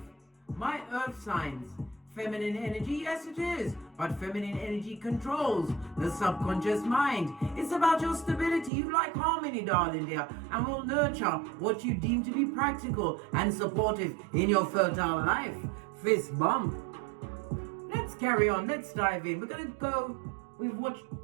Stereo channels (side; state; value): left; drops out; at 8.7 s